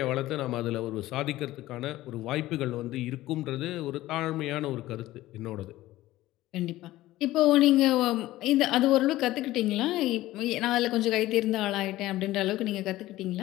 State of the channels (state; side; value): quieter; right; 16.3 dB